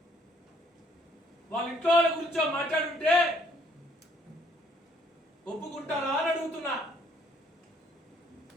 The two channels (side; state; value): both; normal; correlation 0.64